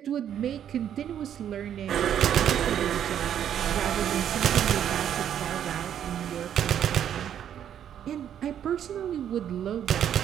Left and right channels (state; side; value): quieter; left; 9.7 dB